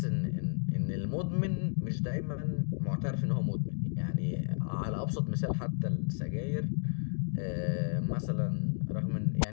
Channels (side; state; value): right; silent; digital silence